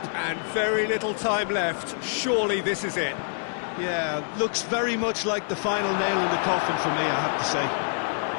and very little time left. Surely this is it. Yeah, looks very much like the final nail in the coffin for me, I have to say.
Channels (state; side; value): silent; right; digital silence